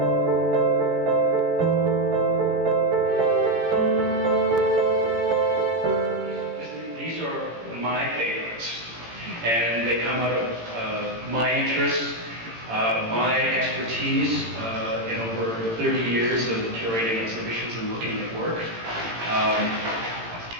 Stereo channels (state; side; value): late; left; 18 ms